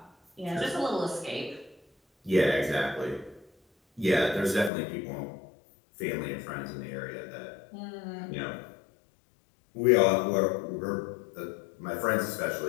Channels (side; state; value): right; drops out; at 4.7 s